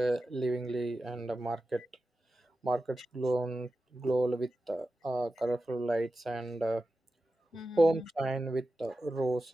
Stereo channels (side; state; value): both; normal; correlation 0.92